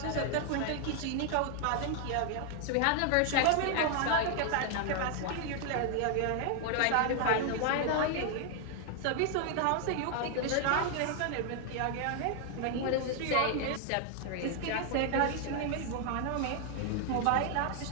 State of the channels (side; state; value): both; different; correlation 0.00